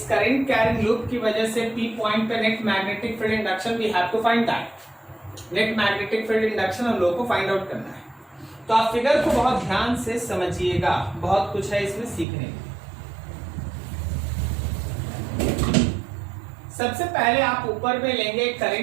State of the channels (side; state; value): left; drops out; at 12.2 s